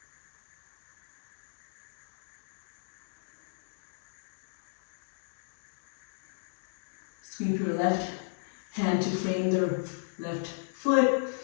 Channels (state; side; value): silent; right; digital silence